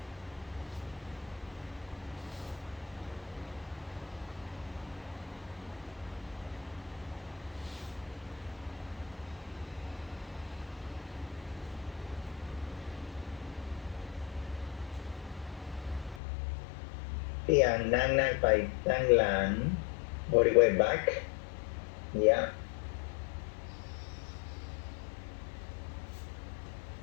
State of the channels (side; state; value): right; drops out; at 16.2 s